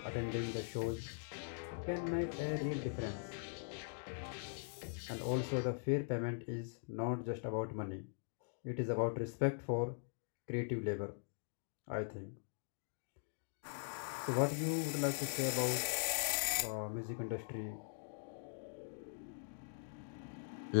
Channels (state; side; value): silent; right; digital silence